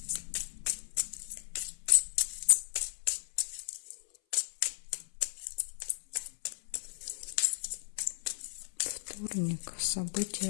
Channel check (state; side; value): silent; right; 54 dB below the other